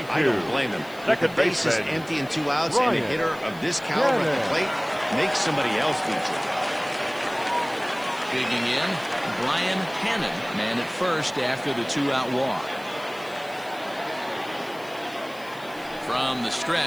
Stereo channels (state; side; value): noise; left; hiss, 23 dB below the sound